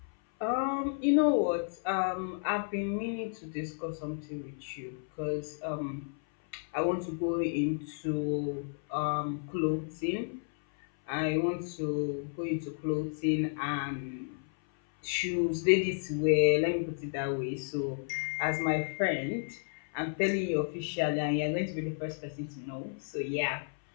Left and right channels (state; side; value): silent; right; 56 dB below the other